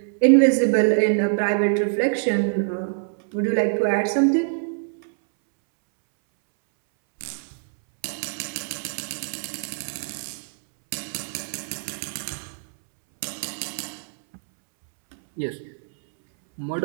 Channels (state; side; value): silent; left; 62 dB below the other